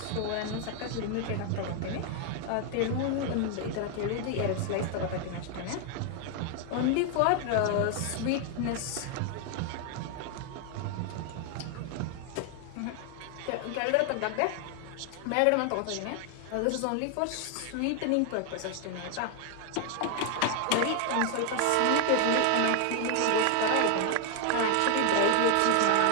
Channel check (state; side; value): different; both; correlation 0.00